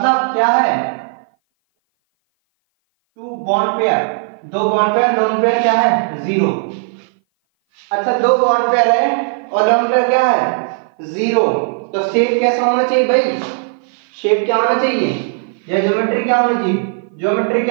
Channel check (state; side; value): silent; left; 57 dB below the other